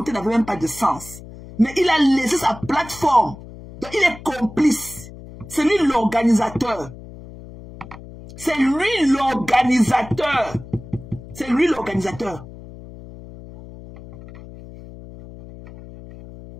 n'avait même pas de sens. Mais il a laissé sa plateforme. Donc il est complice. C'est lui l'organisateur. C'est lui l'organisateur. C'est lui l'organisateur.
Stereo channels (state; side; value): noise; left; hum, 16 dB below the sound